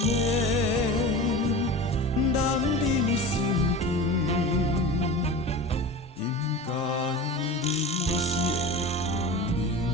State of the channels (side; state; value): both; normal; correlation 0.33